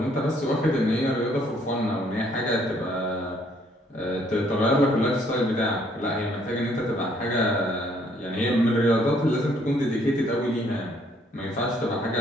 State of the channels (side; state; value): both; normal; correlation 0.65